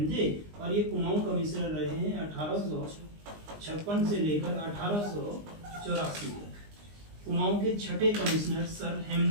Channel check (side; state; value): left; late; 20 ms